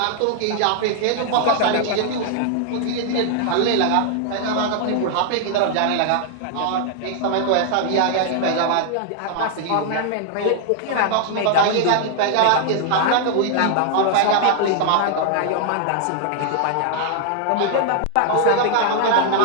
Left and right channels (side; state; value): both; different; correlation 0.00